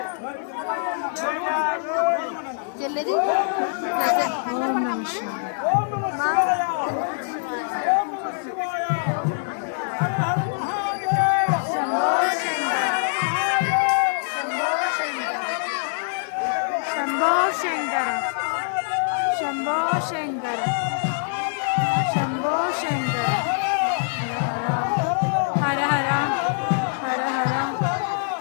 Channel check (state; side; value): silent; right; 59 dB below the other